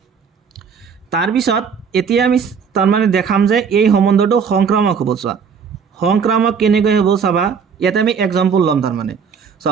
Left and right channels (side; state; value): left; quieter; 6.3 dB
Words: তাৰপিছত এতিয়া আমি তাৰ মানে দেখাম যে এই সম্বন্ধটো সংক্ৰামক হ'ব চোৱা সংক্ৰামক কেনেকৈ হ'ব চাবা ইয়াতে আমি এক্সাম্পল ল'ম তাৰ মানে